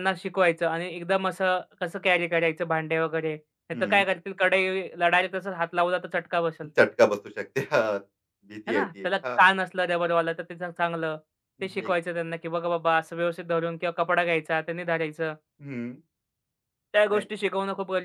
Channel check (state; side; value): identical; both; correlation 1.00